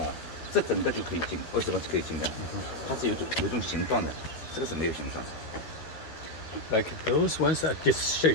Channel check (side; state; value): right; late; 12 ms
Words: 这整个就可以进，为什么是可以进的？它是有一种形状的，这个是没有形状。Like those ones are